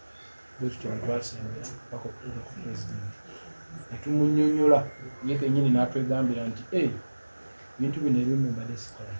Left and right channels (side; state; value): both; inverted; correlation -1.00